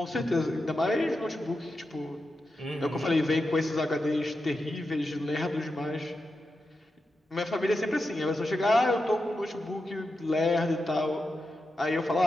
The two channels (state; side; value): normal; both; correlation 0.89